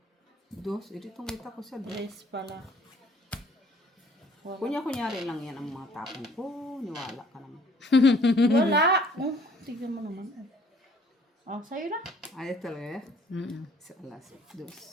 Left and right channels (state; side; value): normal; both; correlation 0.57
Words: Dos? Ito itong kita ko sa dos. Tres pala. Kunyari lang yan ang mga tapon ko. Niwala ka naman. Wala. Oh, tignan mo naman. Oh, sa'yo na. Ayos talaga eh. Mm-mm. Sa alas. Dos.